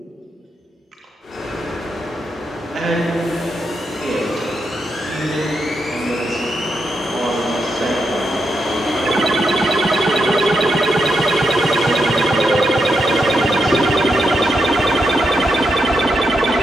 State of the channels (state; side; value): normal; both; correlation 0.82